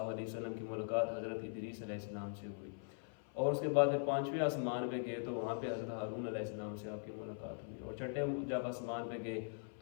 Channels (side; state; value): right; silent; 50 dB below the other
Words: علیہ وسلم کی ملاقات حضرت ادریس علیہ السلام سے ہوئی، اور اس کے بعد پھر پانچویں آسمان پہ گئے تو وہاں پہ حضرت ہارون علیہ السلام سے آپ کی ملاقات ہوئی، اور چھٹے جب آسمان پہ گئے